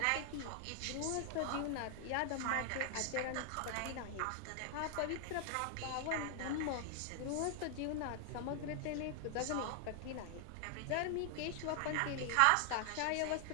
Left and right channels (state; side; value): different; both; correlation 0.00